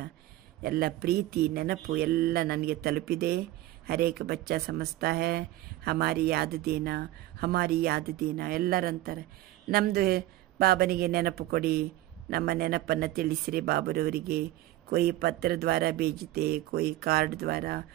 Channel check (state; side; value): quieter; left; 16.0 dB